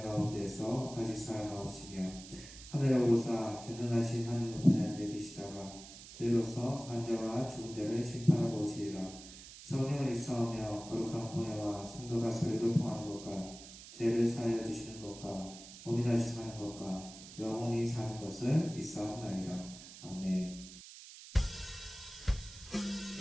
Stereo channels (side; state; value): right; noise; hiss, 15 dB below the sound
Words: 가운데서 다시 살아나오시며 하늘에 오르사 전능하신 하늘 높이에 앉아 계시다가 저희로서 산자와 죽은 자를 심판하고 오시리라. 성령을 일사하며 거룩한 공예와 성도가 서로 교통하는 것과 죄를 사하여 주시는 것과 몸이 다시 사는 것과 영원히 사는 것을 믿사옵나이다. 아멘.